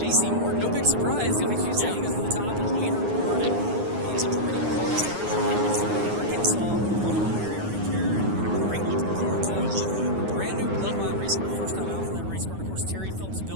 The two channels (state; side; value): late; left; 9.6 ms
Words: Morton, no big surprise. Like you said, Yeah. He goes to the top of the leaderboard, and he is a perennial hard charger in that Missouri, Arkansas, Oklahoma area right there. And A great-looking car, too. I love that. A brand-new Bloodline race car. First time out for that race car. And, of course, Terry Phillips